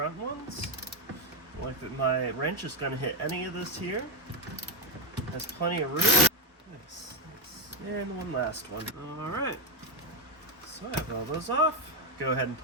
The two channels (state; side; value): normal; both; correlation 0.10